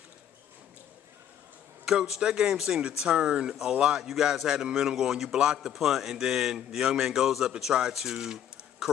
Coach, that game seemed to turn a lot. You guys had the momentum going. You blocked the punt, and then the young man goes up to try to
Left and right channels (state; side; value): quieter; right; 10.1 dB